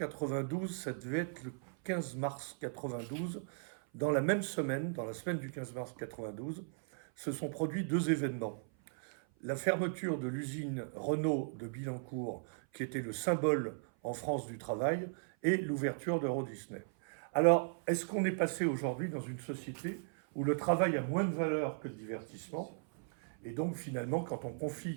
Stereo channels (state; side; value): silent; left; 53 dB below the other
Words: ça devait être le 15 mars 92, dans la même semaine, dans la semaine du 15 mars 92, se sont produits 2 événements. La fermeture de l'usine Renault de Billancourt, qui était le symbole en France du travail, et l'ouverture d'Euro Disney. Alors, est-ce qu'on est passé aujourd'hui dans une société où le travail a moins de valeur que le divertissement? Et donc, finalement, quand on